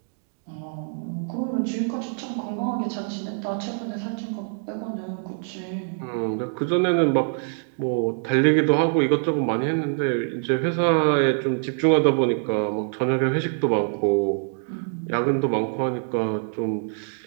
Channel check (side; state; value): left; silent; digital silence